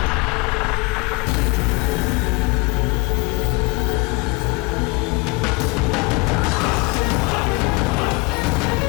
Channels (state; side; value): quieter; right; 24.7 dB